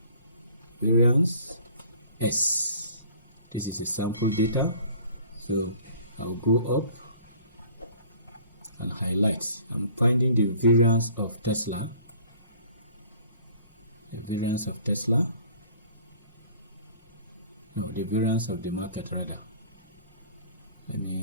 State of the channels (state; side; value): inverted; both; correlation -0.51